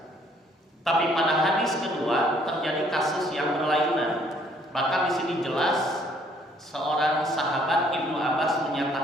Tapi pada hadis kedua terjadi kasus yang berlainan. Bahkan di sini jelas seorang sahabat Ibnu Abbas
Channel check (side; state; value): both; normal; correlation 0.63